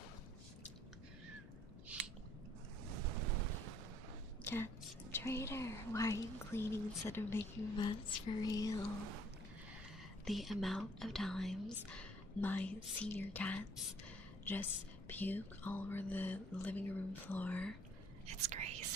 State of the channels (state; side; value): noise; left; hum, 19 dB below the sound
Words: Cats, traitor, why are you cleaning instead of making mess for real? The amount of times my senior cats just puke all over the living room floor, it's